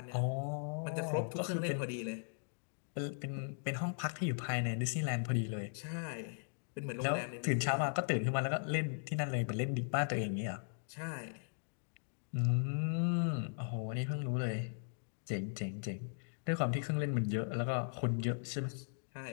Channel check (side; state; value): right; silent; digital silence